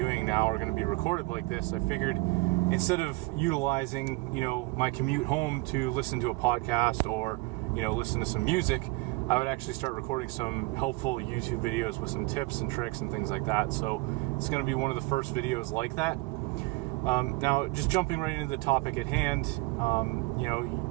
now are going to be recorded like this. I figured instead of utilizing, my commute home to listen to a podcast or, listen to some music, I would actually start recording some helpful YouTube videos with some tips and tricks and things like that. So it's going to be one of the first videos like that. Now, just jumping right into the topic at hand,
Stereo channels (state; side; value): quieter; left; 24.2 dB